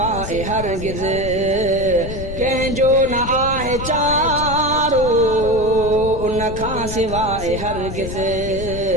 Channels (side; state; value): left; noise; rumble, 8 dB below the sound